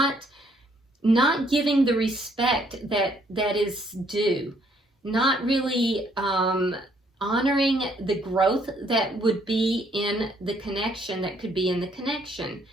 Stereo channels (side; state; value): both; normal; correlation 0.67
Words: giving the respect that is due, not really honoring the growth that would be in the connection, that could be in the connection.